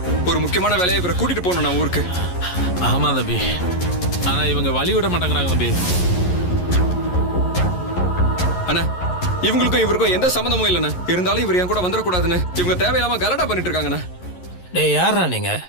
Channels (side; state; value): right; late; 11 ms